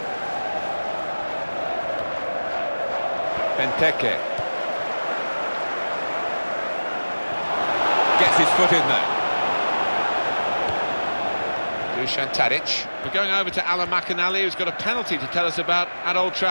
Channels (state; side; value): inverted; both; correlation -1.00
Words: Benteke. Gets his foot in there. Dusan Tadic. We're going over to Alan McInally, who's got a penalty to tell us about at Old